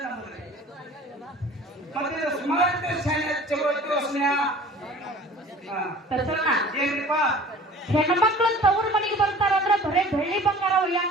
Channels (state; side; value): normal; both; correlation 0.45